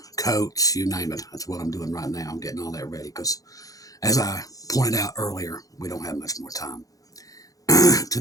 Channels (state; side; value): late; right; 0.17 ms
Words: coats, you name it. That's what I'm doing right now. I'm getting all that ready because, as I pointed out earlier, we don't have much more time.